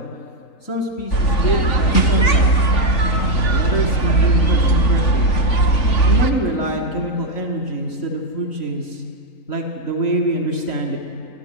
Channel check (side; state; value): right; late; 3.5 ms